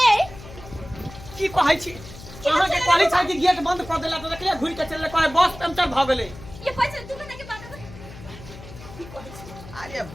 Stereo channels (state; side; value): noise; left; hum, 16 dB below the sound